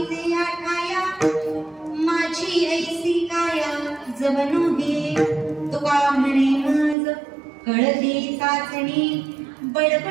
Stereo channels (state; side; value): drops out; left; at 7.0 s